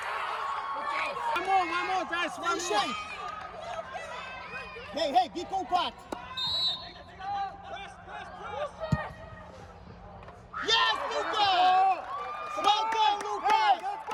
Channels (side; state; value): both; identical; correlation 1.00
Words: One more, guys. One more. Hey, be compact. Yes, Lucas! Well done, Lucas! Let's